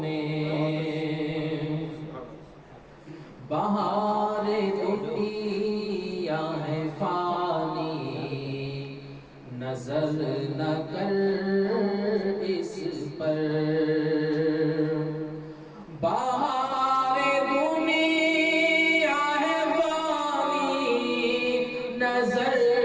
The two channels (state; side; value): identical; both; correlation 1.00